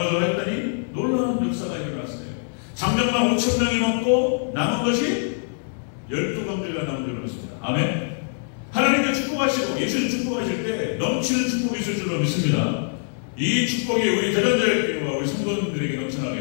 했더니 놀라운 역사가 일어났어요. 장정만 5,000명이 먹고 남은 것이 12광주가 남은 줄로 믿습니다. 아멘. 하나님께 축복하시고 예수님 축복하실 때 넘치는 축복이 있을 줄로 믿습니다. 이 축복이 우리 대전자교회와 우리 성도님들에게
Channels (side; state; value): right; silent; 63 dB below the other